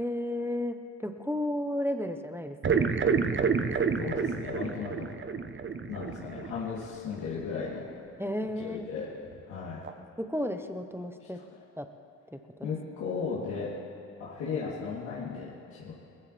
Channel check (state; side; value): normal; both; correlation 0.46